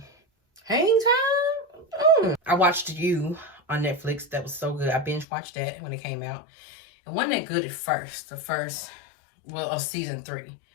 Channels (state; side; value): drops out; right; at 5.2 s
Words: Hang Time. I watched You on Netflix. That was so good. I binge watched that when it came out. It wasn't that good at first. Of season 3.